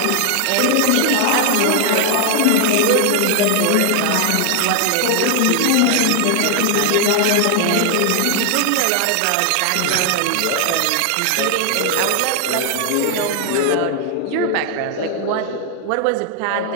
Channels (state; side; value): different; both; correlation 0.00